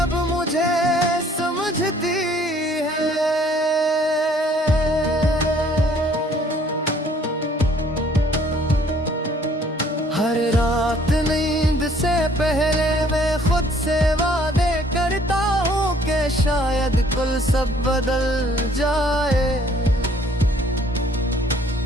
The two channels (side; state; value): both; normal; correlation 0.59